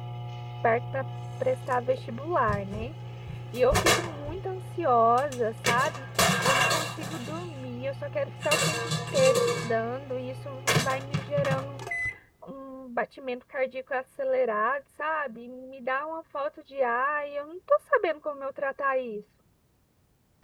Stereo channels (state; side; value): identical; both; correlation 1.00